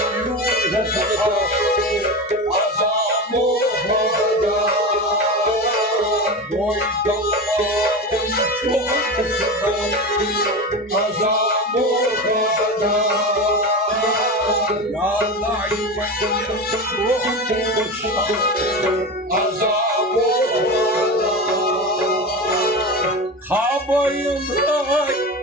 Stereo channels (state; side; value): normal; both; correlation 0.24